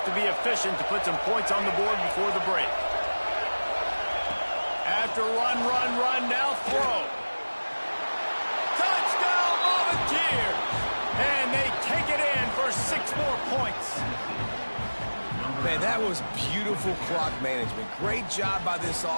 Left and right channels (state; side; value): inverted; both; correlation -1.00